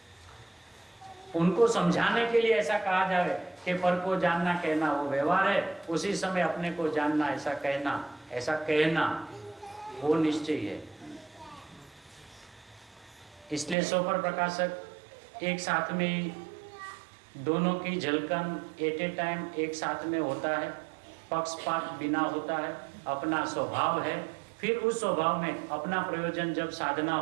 उनको समझाने के लिए ऐसा कहा जाए कि पर को जानना कहना वो व्यवहार है, उसी समय अपने को जानना ऐसा कहना वो निश्चय है। इसलिए स्व पर प्रकाशक एक साथ में दोनों की झलकन एट ए टाइम एक साथ में होता है, पक्षपात बिना होता है, अपना स्वभाव है। फिर उस स्वभाव में अपना प्रयोजन जब साधना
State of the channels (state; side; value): drops out; left; at 13.8 s